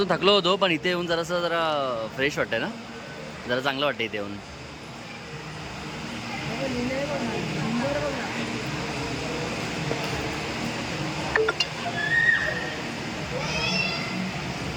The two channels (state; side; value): identical; both; correlation 1.00